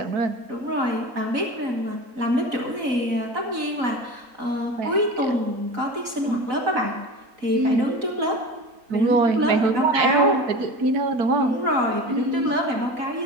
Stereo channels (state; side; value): late; left; 4.0 ms